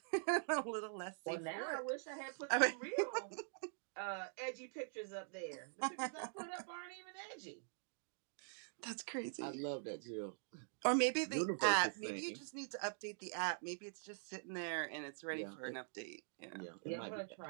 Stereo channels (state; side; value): silent; left; digital silence